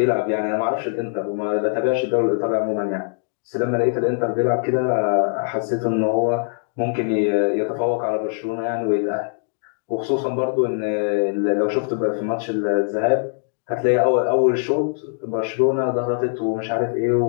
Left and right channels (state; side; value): silent; right; digital silence